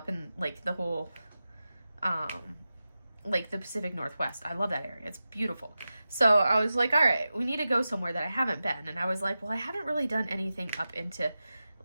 in like the whole, like the Pacific Northwest. I love that area. It's beautiful. So I was like, all right, we need to go somewhere that I haven't been. And I was like, well, I haven't really done anything up into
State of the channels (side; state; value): both; inverted; correlation -0.93